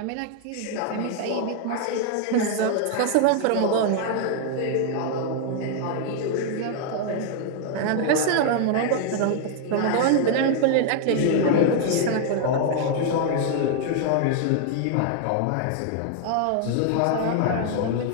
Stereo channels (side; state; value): both; different; correlation 0.00